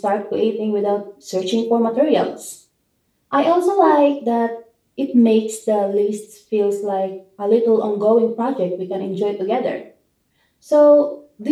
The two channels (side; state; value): both; identical; correlation 1.00